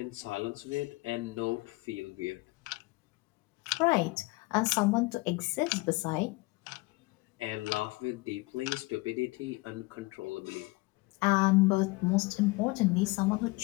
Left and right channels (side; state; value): right; quieter; 23.7 dB